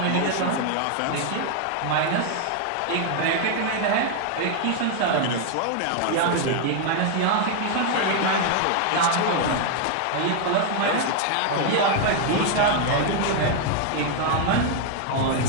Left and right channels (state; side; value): different; both; correlation 0.00